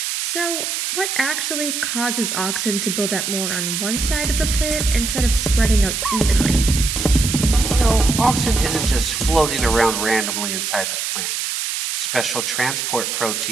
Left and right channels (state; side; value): noise; right; hiss, 2 dB below the sound